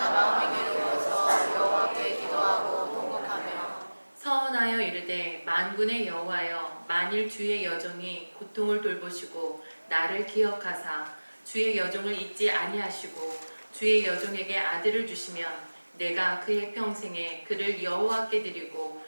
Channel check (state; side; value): inverted; both; correlation -1.00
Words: 마음이 괴로워서 여호와께 기도하고 통곡하며 서원하여 이르되 만군의 여호와여, 만일 주의 여종이 고통을 돌보시고 나를 기억하사 주의 여종을 잊지 아니하시고 주의 여종에게 아들을 주시면 내가 그의 평생에 그를 여호와께 드리고